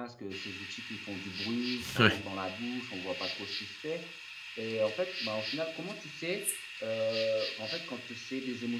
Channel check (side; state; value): both; identical; correlation 1.00